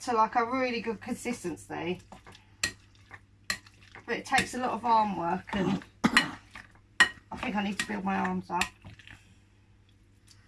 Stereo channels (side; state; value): both; identical; correlation 1.00